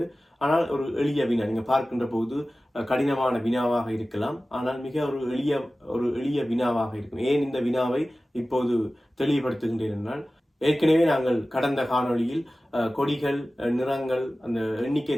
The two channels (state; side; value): normal; both; correlation 0.96